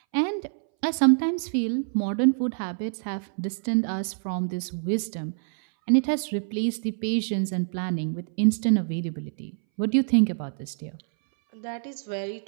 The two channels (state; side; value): silent; left; 61 dB below the other